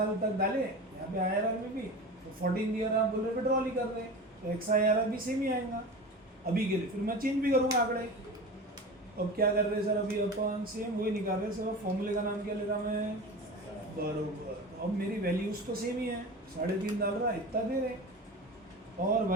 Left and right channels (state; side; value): normal; both; correlation 0.31